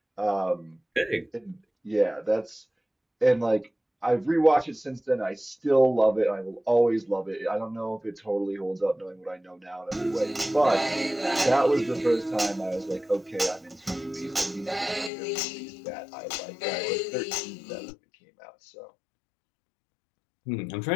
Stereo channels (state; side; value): drops out; right; at 15.1 s